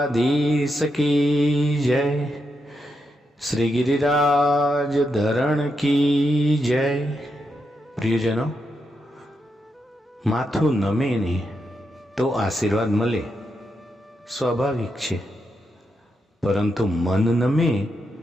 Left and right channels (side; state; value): both; normal; correlation 0.84